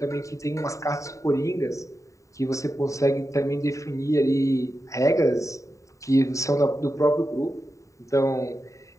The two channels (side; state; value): right; late; 0.16 ms